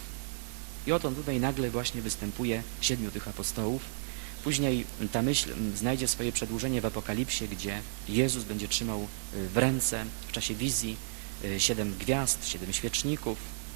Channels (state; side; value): silent; left; 56 dB below the other